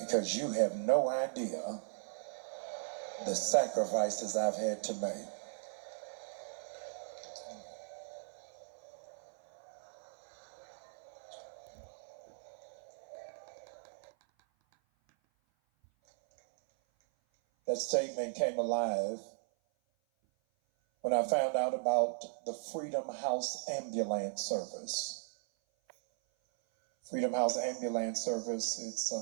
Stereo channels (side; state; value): left; silent; 53 dB below the other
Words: you have no idea the sacrifices I've had to make. That statement came alive when I found out about the Freedom House Ambulance Service. Freedom House Ambulance Service,